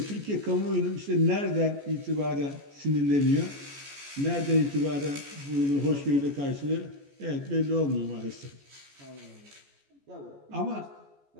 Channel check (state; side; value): late; left; 14 ms